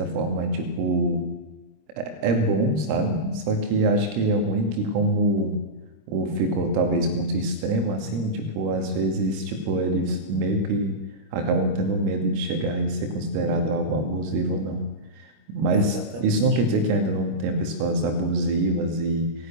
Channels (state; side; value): late; left; 25 ms